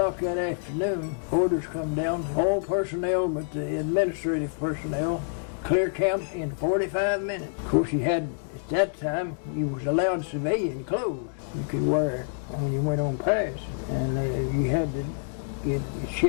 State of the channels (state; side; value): silent; right; digital silence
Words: that afternoon, orders come down to all personnel but the administrative personnel. Clear camp in 45 minutes. Of course, at that time, you was allowed civilian clothes you could wear when you went on pass. And you had to